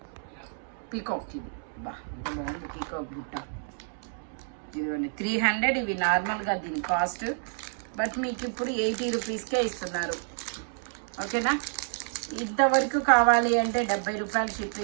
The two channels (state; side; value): silent; left; 59 dB below the other